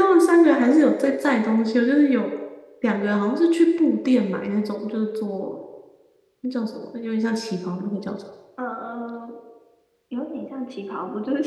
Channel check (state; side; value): identical; both; correlation 1.00